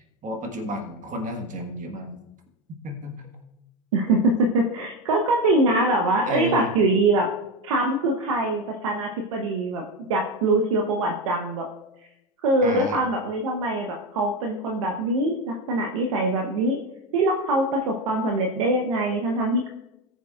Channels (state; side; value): normal; both; correlation 0.17